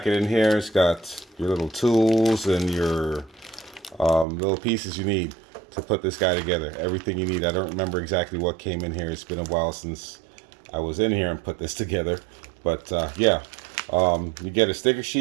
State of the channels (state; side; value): drops out; left; at 4.2 s